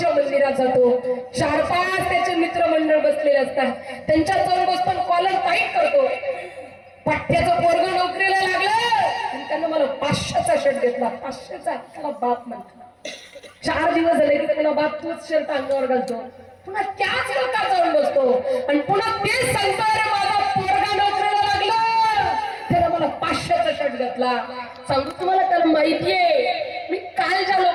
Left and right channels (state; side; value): identical; both; correlation 1.00